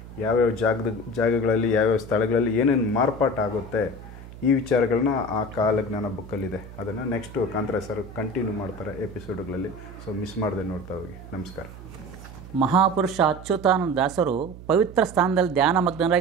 ಯಾವ್ಯಾವ ಜಾಗಗಳಲ್ಲಿ ಯಾವ್ಯಾವ ಸ್ಥಳಗಳಲ್ಲಿ ಏನೇನು ಮಾರ್ಪಾಟಾಗುತ್ತೆ, ಈ ವಿಚಾರಗಳನ್ನ ಆ ಕಾಲಜ್ಞಾನ ಬುಕ್ಕಲ್ಲಿದೆ. ಅದನ್ನು ನೆಕ್ಸ್ಟ್ ಕಾಂತರಾಜ್ ಸರ್ ಕಂಟಿನ್ಯೂ ಮಾಡ್ತಾರೆ ಎಪಿಸೋಡ್ಗಳಲ್ಲಿ. ಸೊ ಮಿಸ್ ಮಾಡದೆ ನೋಡ್ತಾ ಹೋಗಿ. ನಮಸ್ಕಾರ. ಮಹಾಪುರುಷ ಅಚ್ಯುತಾನಂದ ದಾಸರು ಪವಿತ್ರ ಸ್ಥಾನದಲ್ಲಿ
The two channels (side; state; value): right; noise; hum, 16 dB below the sound